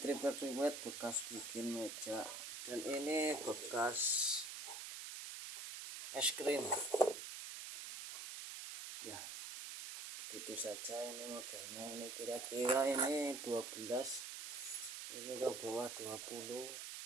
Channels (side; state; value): right; noise; hiss, 7 dB below the sound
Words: bekas bikin meja, dan ini bekas es krim ya. Begitu saja ini modelnya. Ini kira-kira ini 12, ini ke bawah